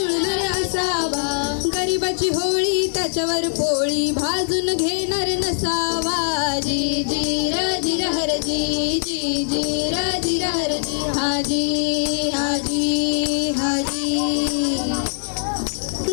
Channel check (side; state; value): right; silent; 65 dB below the other